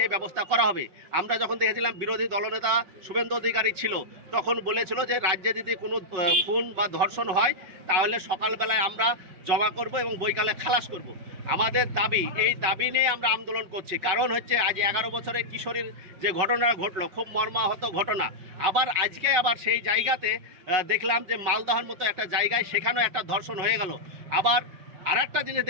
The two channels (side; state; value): left; late; 5.5 ms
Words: ব্যবস্থা করা হবে। আমরা যখন দেখেছিলাম বিরোধী দলনেতা শুভেন্দু অধিকারী ছিল, তখন বলেছিল যে রাজ্যে যদি কোনো খুন বা ধর্ষণ হয় তাহলে সকালবেলায় আমরা জমা করব এবং বৈকালে খালাস করব। আমাদের দাবি, এই দাবি নিয়ে আমরা আন্দোলন করছি। কারণ আজ 11 বছরের কিশোরীর যে ঘটনা ঘটলো, খুব মর্মাহত ঘটনা। আবার সেই জায়গাতে দেখলাম যে মালদহের মতো একটা জায়গায় সেখানেও একটা ধর্ষণ হয়ে গেল। আবার আর একটা জিনিস